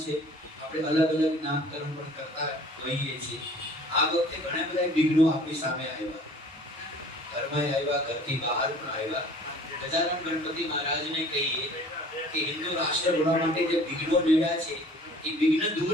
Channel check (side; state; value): both; normal; correlation 0.50